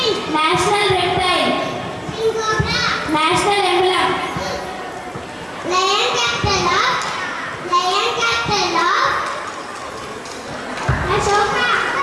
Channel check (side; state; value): both; identical; correlation 1.00